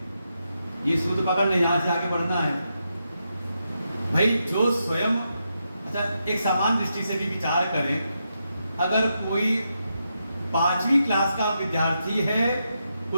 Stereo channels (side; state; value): both; inverted; correlation -0.84